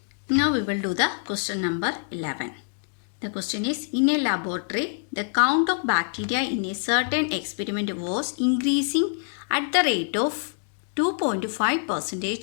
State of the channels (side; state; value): right; silent; 61 dB below the other